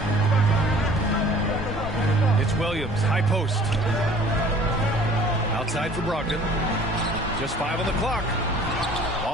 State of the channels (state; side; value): normal; both; correlation 0.50